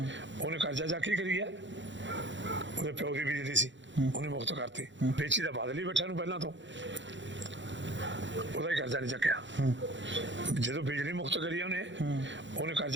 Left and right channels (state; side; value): late; left; 0.54 ms